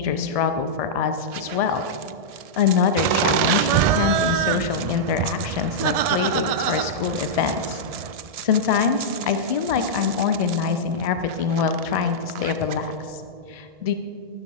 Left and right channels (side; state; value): left; late; 1.7 ms